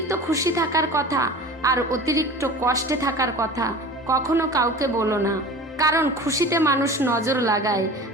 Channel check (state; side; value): normal; both; correlation 0.38